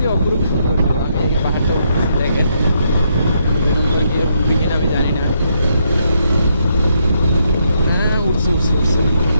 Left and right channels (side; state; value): both; inverted; correlation -0.76